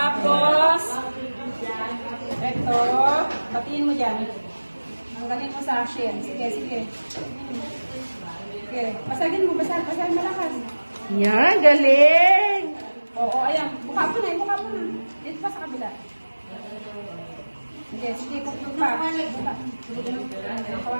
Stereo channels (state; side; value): inverted; both; correlation -1.00